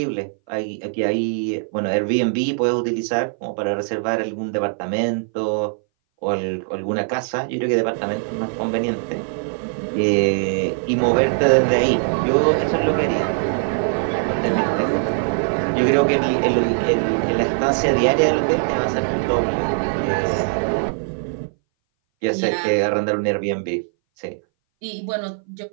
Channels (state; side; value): silent; left; 60 dB below the other